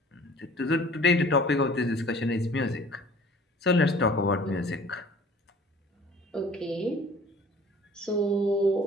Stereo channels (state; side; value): normal; both; correlation 0.49